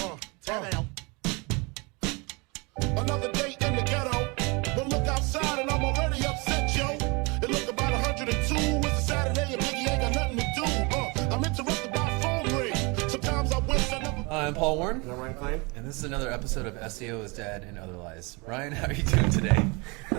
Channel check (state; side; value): quieter; left; 28.6 dB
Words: Another day in the ghetto. But look outside and I'm already upset, yo. It look about 102. It's a Saturday and Biggie ain't got nothing to do. I'm interrupted by a phone ring. Sometimes I wish I never... I'm Paul Warren. I'm Ryan Klein. And this is another episode of SEO is Dead and Other Lies. Ryan, how are you doing today?